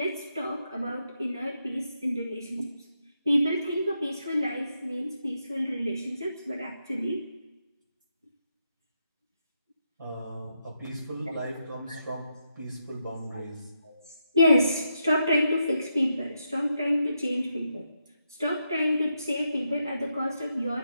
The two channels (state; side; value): inverted; both; correlation -0.83